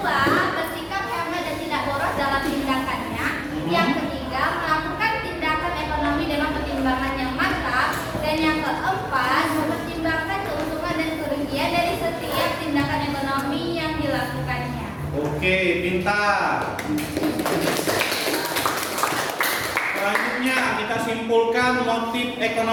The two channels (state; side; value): identical; both; correlation 1.00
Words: bersikap hemat dan tidak boros dalam tindakannya. Yang ketiga, melakukan tindakan ekonomi dengan pertimbangan yang matang. Dan yang keempat, mempertimbangkan keuntungan dan kerugian dari setiap tindakan ekonomi yang dilakukannya. Oke, pintar. Selanjutnya kita simpulkan motif